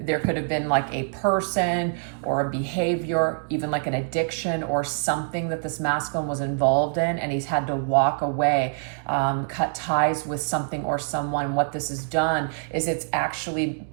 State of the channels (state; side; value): silent; left; digital silence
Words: could have been like a person or a behavior, even like an addiction or something that this masculine was involved in, and he's had to walk away, cut ties with something or someone. What this has done is it's actually